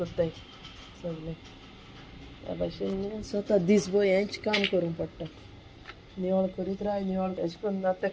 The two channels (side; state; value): both; identical; correlation 1.00